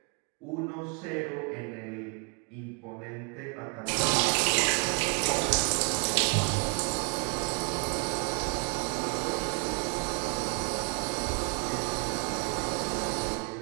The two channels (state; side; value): quieter; left; 33.9 dB